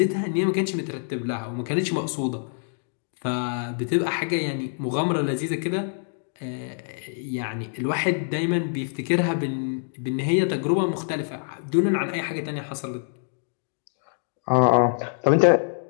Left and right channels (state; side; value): silent; right; digital silence